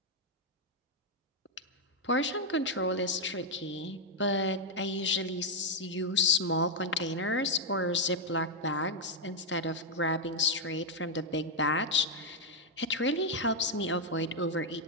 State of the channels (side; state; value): both; normal; correlation 0.00